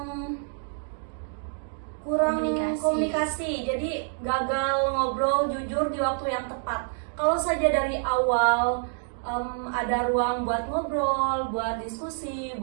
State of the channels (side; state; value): left; silent; digital silence